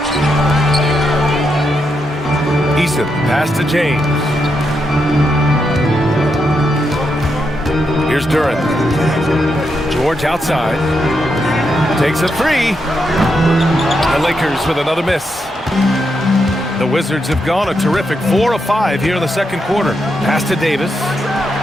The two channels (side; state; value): both; normal; correlation 0.82